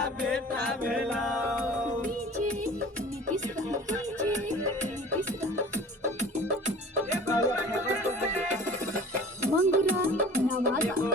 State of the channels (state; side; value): normal; both; correlation 0.43